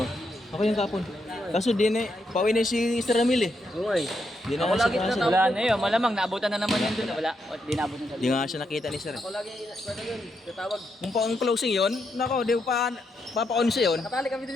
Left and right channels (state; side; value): normal; both; correlation 0.81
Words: Ako yung kapon. Kaso di na, pauwi na si Mr. Ramil eh. Oo eh. Di na Ako siya lagi kasi. na- Wala na yun, malamang naabutan na naman yun dun. Wala, di naabutan sa Di nga siya nakita ni Sir eh. Ako lagi, ano yun, tatawag. Kung pa ang closing yun, nako, di pa papaon siya yun. Nakatali kami din,